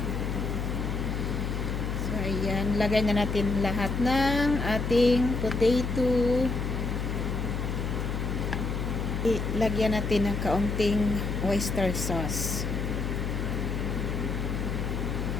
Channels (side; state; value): left; noise; hum, 2 dB below the sound